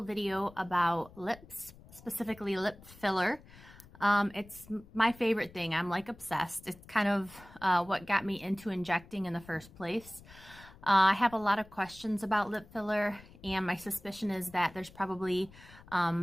video about lips, specifically lip filler. It's my favorite thing. I'm like obsessed. It's kind of what got me into injecting in the first place. I have a lot of questions about lip filler, and my suspicion is that there's probably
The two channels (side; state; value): left; noise; rumble, 21 dB below the sound